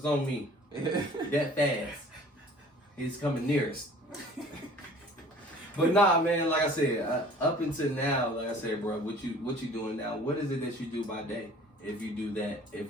on me. That fast. He's coming nearest. But nah, man, like I said, up until now, like I said, bro, what you doing now? What is it that you do by day? If you do that,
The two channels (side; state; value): both; normal; correlation 0.49